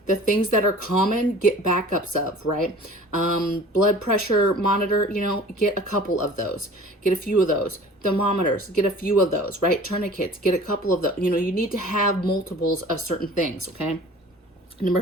The things that are common, get backups of, right? Blood pressure monitor, you know, get a couple of those. Get a few of those. Thermometers, get a few of those, right? Tourniquets, get a couple of those. You know, you need to have multiples of certain things, okay? Number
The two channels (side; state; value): both; normal; correlation 0.45